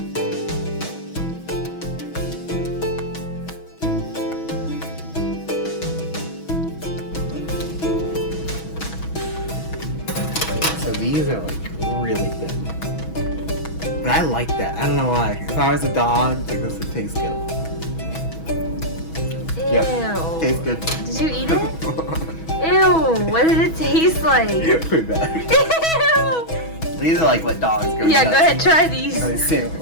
So these are like really thin. But I like that. I don't know why. If I was a dog, like this would taste good. Ew. Yep. Tastes good. Did you eat it? Ew. What did it taste like? Pretty bad. Ew. These are like what dogs go Yeah, nuts go ahead, for. try these. Oh,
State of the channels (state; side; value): late; right; 6.2 ms